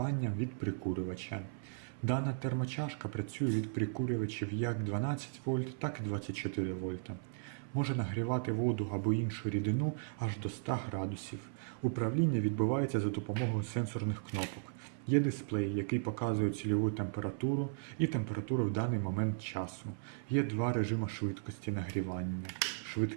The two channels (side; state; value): left; silent; 54 dB below the other